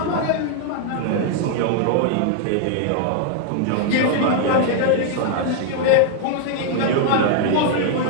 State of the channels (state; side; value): different; both; correlation 0.00